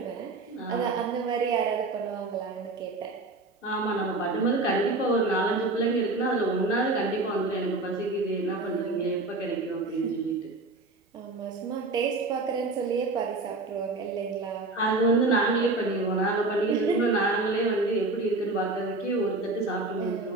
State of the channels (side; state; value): left; quieter; 3.2 dB